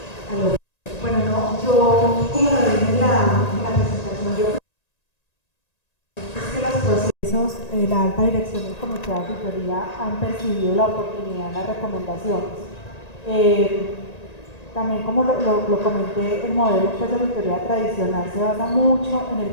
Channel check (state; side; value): late; right; 1.9 ms